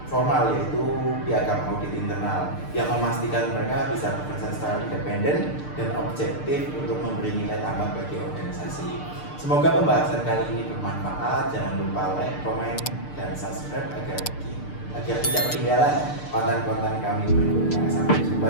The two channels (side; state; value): right; late; 6.7 ms